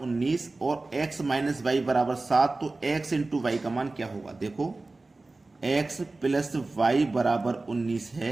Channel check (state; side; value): quieter; left; 3.3 dB